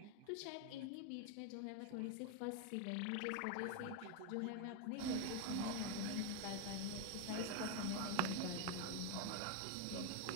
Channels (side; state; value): both; different; correlation 0.01